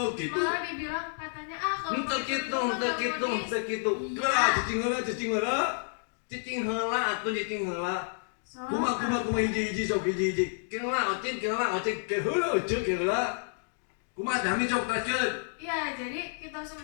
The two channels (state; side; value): silent; right; digital silence